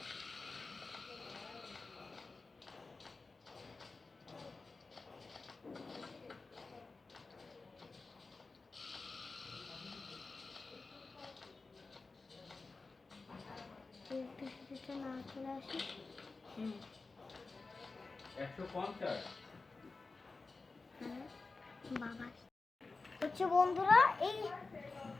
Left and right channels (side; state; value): right; quieter; 3.8 dB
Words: না চলে আসি। 150 বাবা হচ্ছে বন্ধুরা, এই